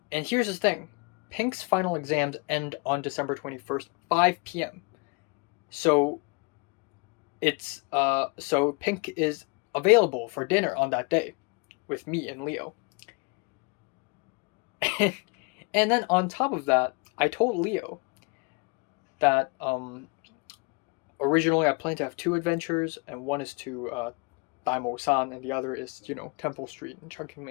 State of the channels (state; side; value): quieter; right; 30.0 dB